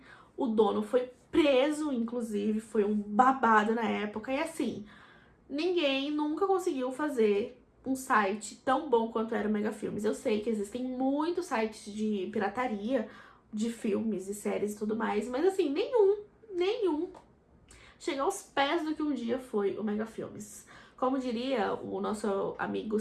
O dono foi preso, inclusive, foi um babado na época, e assim, ninguém nunca conseguiu fazer um site tão bom quanto era o Mega Filmes. Eu sei que existem muitos sites de pirataria de filmes e séries e tudo mais, mas assim, nenhum chega aos pés do que um dia foi o Mega Filmes. Como diria o nosso amigo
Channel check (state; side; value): identical; both; correlation 1.00